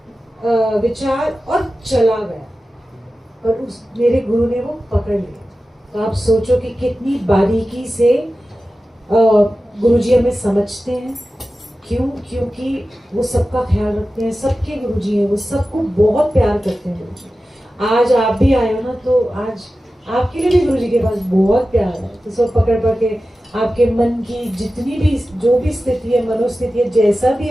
विचार और चला गया, और उस मेरे गुरु ने वो पकड़ लिया। तो आप सोचो कि कितनी बारीकी से गुरुजी हमें समझते हैं। क्यों? क्योंकि वो सबका ख्याल रखते हैं, सबके गुरुजी हैं, वो सबको बहुत प्यार करते हैं गुरुजी। आज आप भी आए हो ना, तो आज आपके लिए भी गुरुजी के पास बहुत प्यार है। तो सब पकड़ के आपके मन की जितनी भी जो भी स्थिति है, मनोस्थिति है, जैसा भी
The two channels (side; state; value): both; normal; correlation 0.94